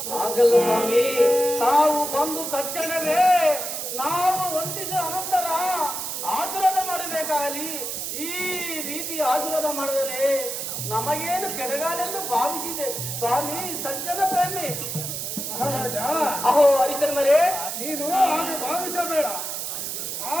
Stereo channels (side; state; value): right; noise; hiss, 4 dB below the sound